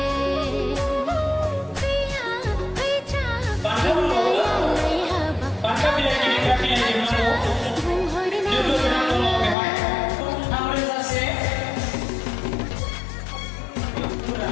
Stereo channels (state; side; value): drops out; right; at 9.6 s